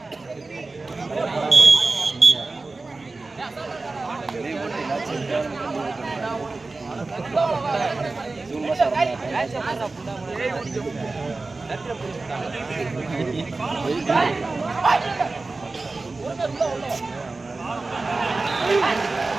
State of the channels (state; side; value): quieter; left; 3.5 dB